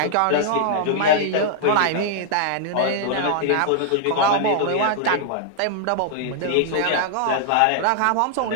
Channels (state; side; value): different; both; correlation -0.01